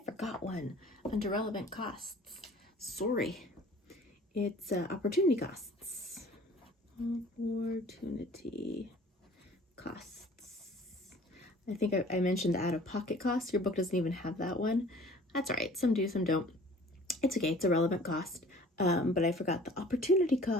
forgot one under relevant costs. Sorry. It's opportunity costs. Opportunity costs. I think I mentioned the out-of-pocket costs. Your book doesn't even have that one. That's all right. Some do, some don't. It's okay. It's a relevant cost. But I forgot the opportunity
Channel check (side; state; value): both; normal; correlation 0.49